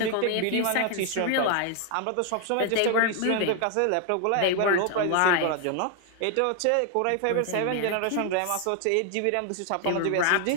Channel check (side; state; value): both; different; correlation 0.00